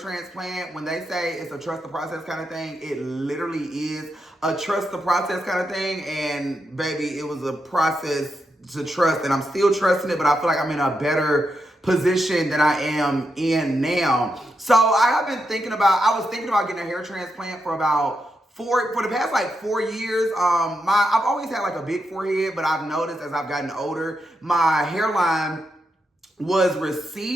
when they say it's a trust the process kind of thing, it literally is a trust the process kind of thing. And baby, it was a process to trust, and I'm still trusting it, but I feel like I'm in a better position than I am in now. So I was thinking about getting a hair transplant for the past like 4 years. I've always had like a big forehead, but I've noticed as I've gotten older, my hairline was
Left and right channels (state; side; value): normal; both; correlation 0.84